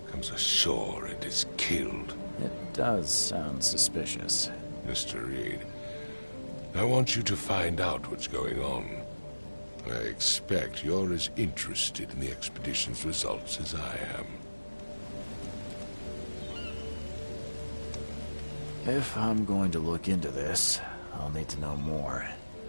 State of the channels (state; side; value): inverted; both; correlation -1.00